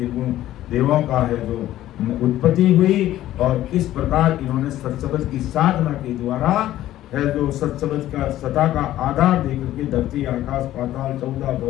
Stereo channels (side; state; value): right; quieter; 13.8 dB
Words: देवों का है जो उत्पत्ति हुई, और किस प्रकार इन्होंने सत्संग की साधना के द्वारा है जो सत्संग का सता का आधार देकर के धरती आकाश पाताल 14